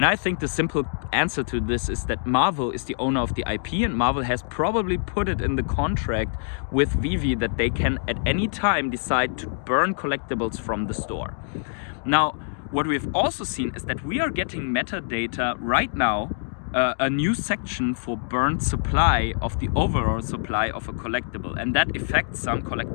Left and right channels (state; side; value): silent; right; digital silence